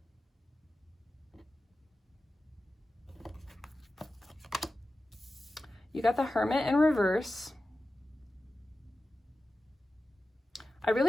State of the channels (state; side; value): normal; both; correlation 0.94